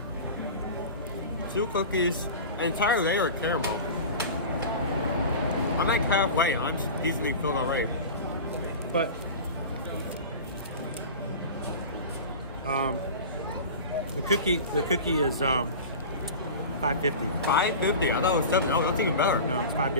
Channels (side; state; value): both; inverted; correlation -0.33